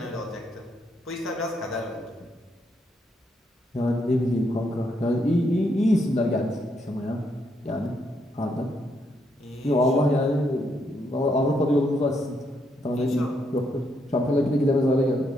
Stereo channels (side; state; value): both; normal; correlation 0.76